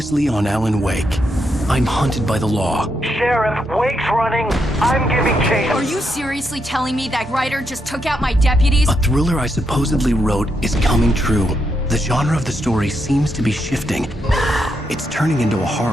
on Alan Wake, I'm hunted by the law. Sheriff, Wake's running. I'm giving chase. Are you seriously telling me that writer just took out my deputies? A thriller I supposedly wrote is coming true. The genre of the story seems to be shifting. It's turning into a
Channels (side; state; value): both; normal; correlation 0.81